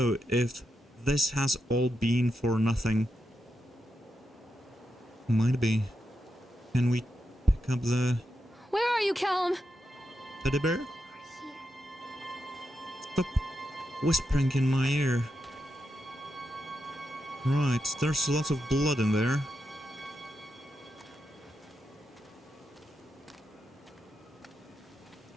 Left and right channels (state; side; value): normal; both; correlation 0.86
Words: if this has all been for nothing. Might be. Can we pick up the Where are you, Callum? teddy bear? Stop whispering in my ear. Right, there's lots of blood in there.